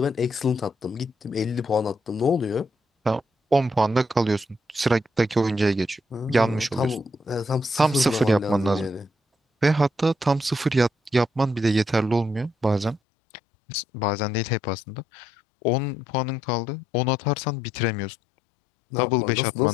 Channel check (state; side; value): drops out; right; at 13.0 s